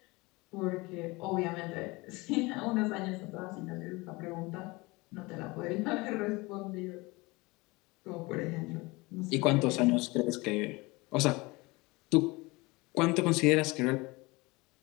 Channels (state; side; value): quieter; right; 23.8 dB